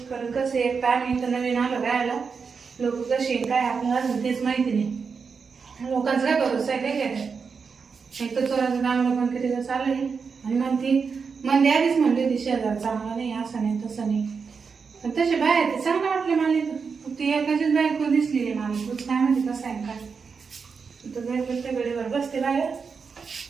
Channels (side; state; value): left; quieter; 5.5 dB